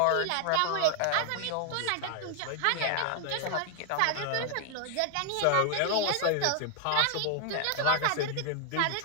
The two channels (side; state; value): both; different; correlation 0.00